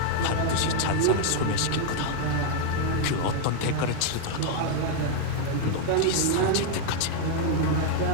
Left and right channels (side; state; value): both; different; correlation 0.00